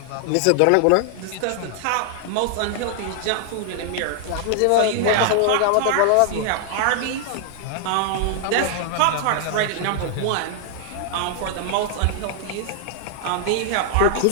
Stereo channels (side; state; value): both; different; correlation -0.01